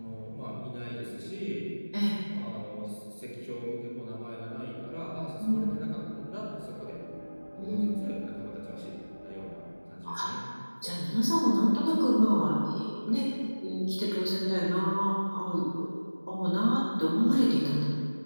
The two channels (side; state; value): both; inverted; correlation -1.00